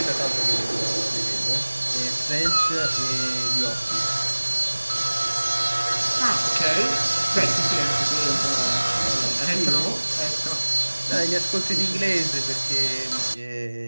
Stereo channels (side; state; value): both; inverted; correlation -1.00